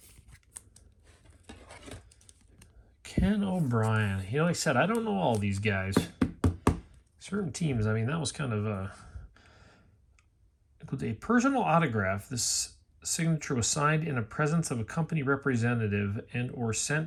Ken O'Brien. You know, like I said, I don't know all these guys. Certain teams, I mean, that was kind of with a personal autograph. This signature was signed in the presence of a company representative and or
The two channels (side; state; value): both; identical; correlation 1.00